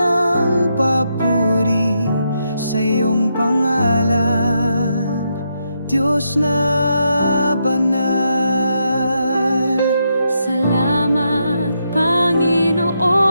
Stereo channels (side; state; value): both; inverted; correlation -0.81